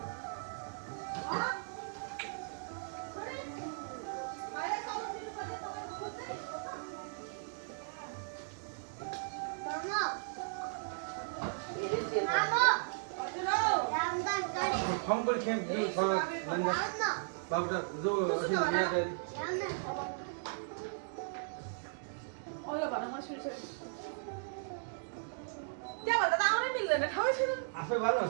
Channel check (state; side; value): silent; left; digital silence